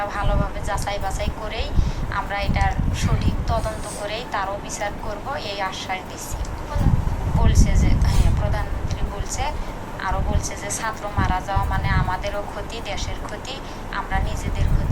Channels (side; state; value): both; identical; correlation 1.00